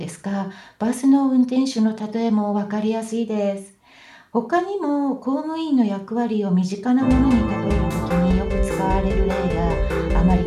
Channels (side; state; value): both; identical; correlation 1.00